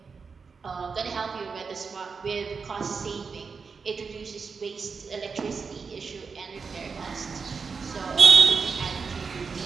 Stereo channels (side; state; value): left; quieter; 5.2 dB